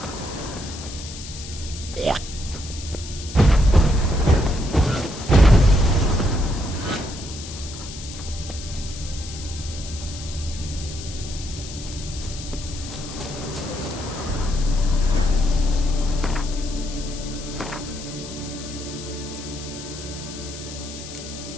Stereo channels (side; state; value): left; noise; hiss, 12 dB below the sound